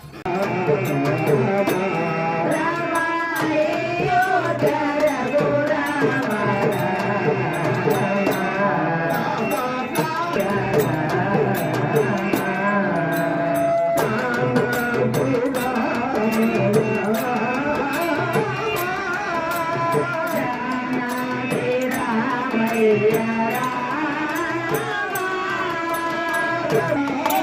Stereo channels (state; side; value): identical; both; correlation 1.00